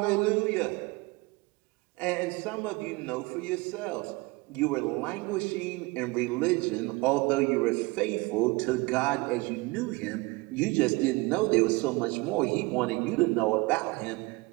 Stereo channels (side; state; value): left; quieter; 24.2 dB